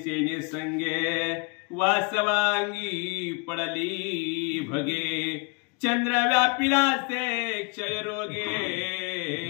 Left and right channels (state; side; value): quieter; right; 32.9 dB